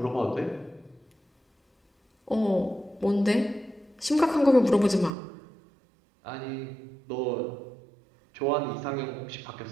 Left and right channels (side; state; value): left; drops out; at 5.1 s